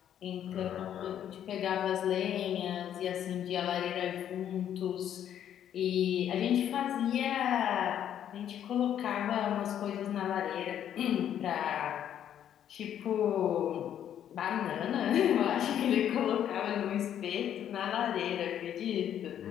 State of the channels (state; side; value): quieter; right; 10.1 dB